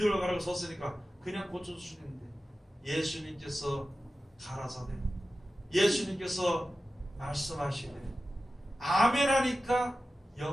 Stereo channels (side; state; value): both; normal; correlation 0.94